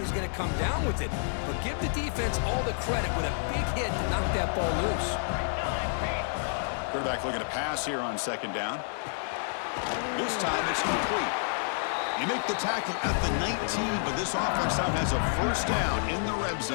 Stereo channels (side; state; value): right; silent; 58 dB below the other